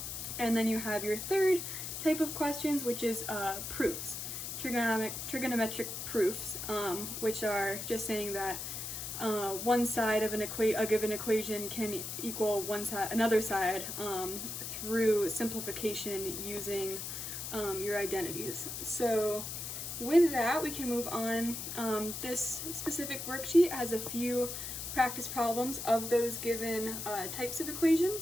And then you have your third type of questions, which is proofs, trigonometric proofs, which are just saying that one side of a given equation can equal another side through simplification using your identities. So with that, we can move on. This specific worksheet has a few practice problems of those given types of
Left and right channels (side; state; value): left; noise; hiss, 6 dB below the sound